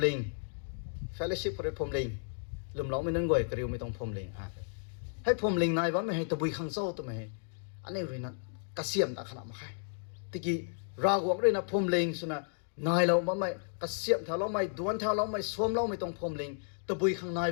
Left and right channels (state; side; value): silent; right; digital silence